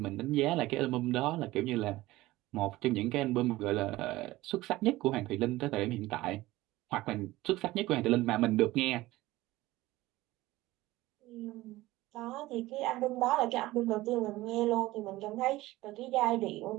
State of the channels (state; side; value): quieter; left; 18.0 dB